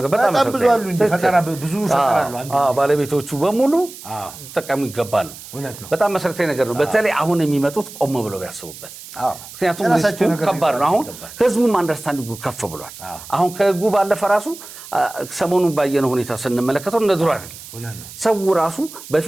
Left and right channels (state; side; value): noise; right; hiss, 15 dB below the sound